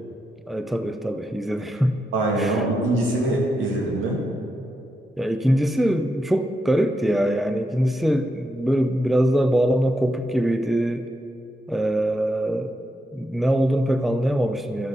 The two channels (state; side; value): normal; both; correlation 0.84